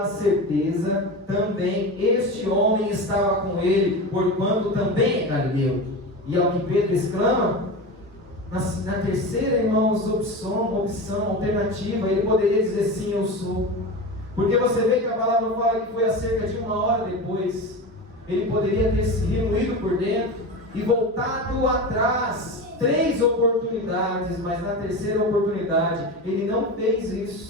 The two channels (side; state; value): both; normal; correlation 0.26